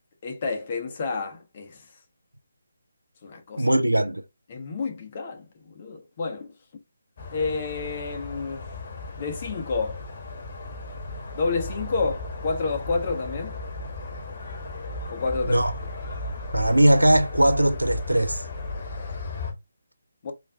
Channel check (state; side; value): inverted; both; correlation -0.89